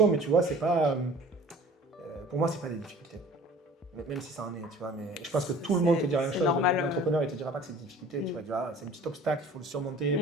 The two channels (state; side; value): normal; both; correlation 0.47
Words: mais tu vois, c'est pas, pour moi, c'est pas des difficultés. Même si ça en est, tu vois, mais je pense que tout le monde te dira la même chose. L'entrepreneur, il te dira pas que c'est des difficultés, tu vas dire, c'est un petit obstacle, il faut le